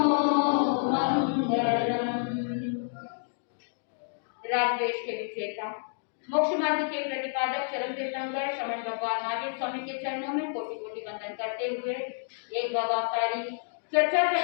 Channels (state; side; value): silent; right; digital silence